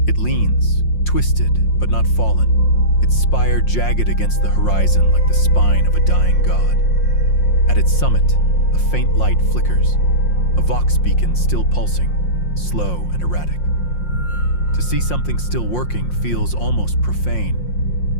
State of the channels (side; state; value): right; late; 5.6 ms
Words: It leans, twisted but not fallen, its spire jagged against the horizon like the spine of a dying god. At its summit, a faint light flickers, a vox beacon still pulsing, slow and erratic. To see something still working feels almost